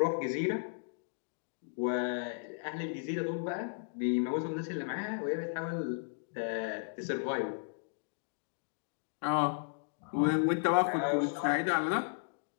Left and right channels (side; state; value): right; silent; digital silence